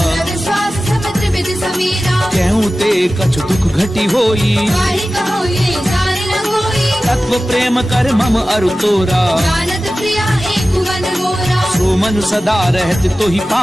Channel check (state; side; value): normal; both; correlation 0.95